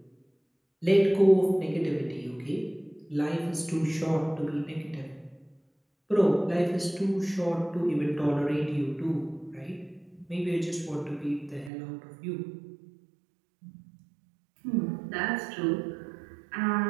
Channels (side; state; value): left; drops out; at 11.7 s